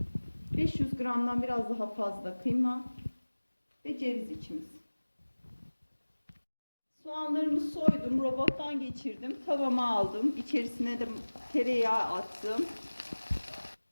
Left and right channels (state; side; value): inverted; both; correlation -1.00